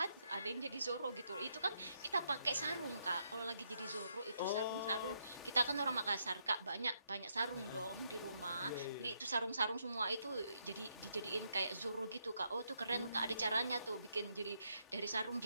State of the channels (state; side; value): inverted; both; correlation -0.77